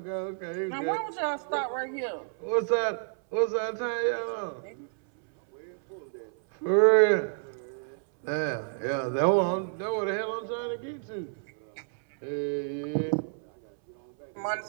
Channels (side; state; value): left; silent; 58 dB below the other